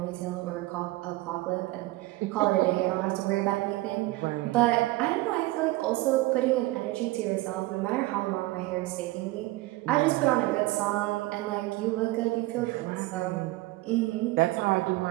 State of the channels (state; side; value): quieter; left; 19.5 dB